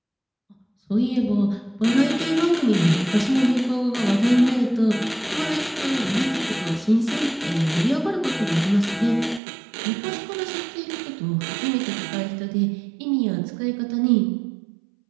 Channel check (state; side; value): drops out; left; at 9.4 s